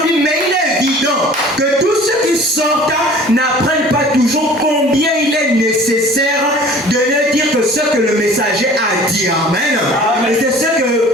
dit, mais il est évident que tous ceux qui sortent n'apprennent pas toujours combien il est nécessaire de ne dire que ce que le messager a dit. Amen. Et c'est ce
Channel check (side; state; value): both; normal; correlation 0.47